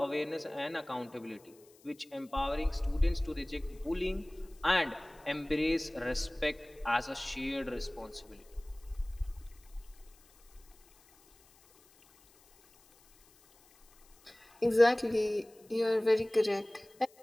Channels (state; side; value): noise; left; hiss, 28 dB below the sound